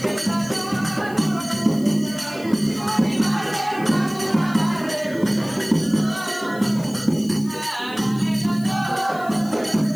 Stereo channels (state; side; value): noise; left; hiss, 20 dB below the sound